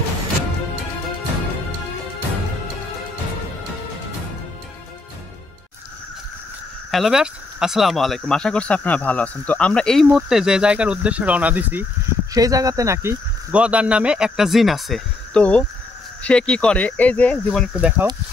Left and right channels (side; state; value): right; quieter; 3.3 dB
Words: হ্যালো ব্যাস, আসসালামু আলাইকুম। আশা করছি আপনারা ভালো আছেন। তো আমরা এই মুহূর্তে যে জায়গার উদ্দেশ্যে রওনা দিছি সেই জায়গাতে নাকি গদার নামে একটা জিন আছে। তো সে কি করে, এই যে জীবন একটু দেখাও,